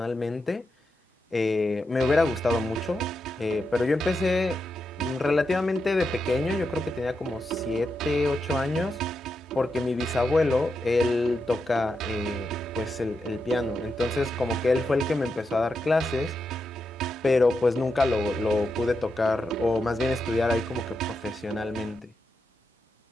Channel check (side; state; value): both; normal; correlation 0.86